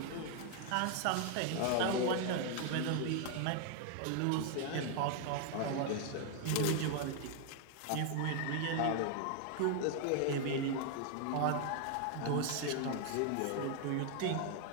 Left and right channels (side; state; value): both; different; correlation 0.00